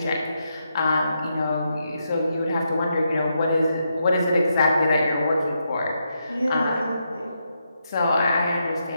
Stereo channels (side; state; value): both; inverted; correlation -0.82